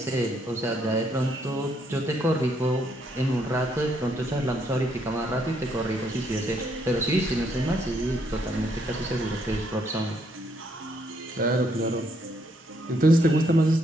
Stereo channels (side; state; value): both; normal; correlation 0.72